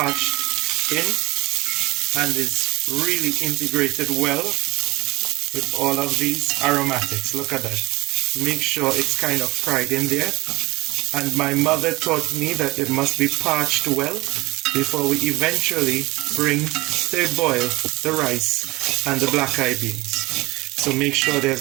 in and is really integrated well with all of these aromatics. Look at that. Make sure it's kind of fried in there. And my mother taught me that it must be parched well before we eventually bring to a boil the rice and the blackeye beans. So make sure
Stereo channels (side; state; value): left; quieter; 21.5 dB